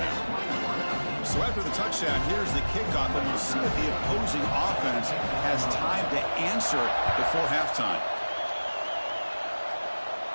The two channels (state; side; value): inverted; both; correlation -1.00